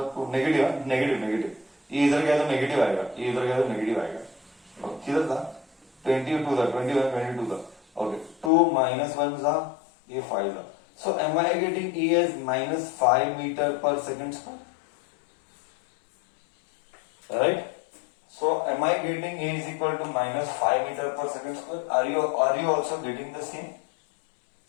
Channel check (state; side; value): drops out; right; at 8.5 s